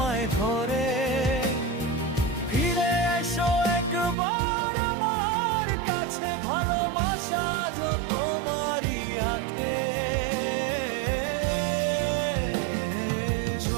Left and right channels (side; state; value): left; drops out; at 4.2 s